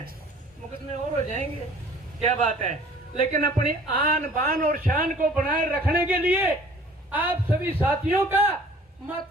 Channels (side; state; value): both; normal; correlation 0.51